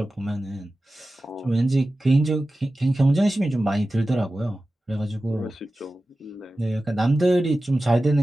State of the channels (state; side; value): normal; both; correlation 0.95